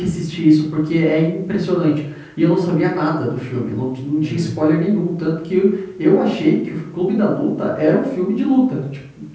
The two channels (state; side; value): identical; both; correlation 1.00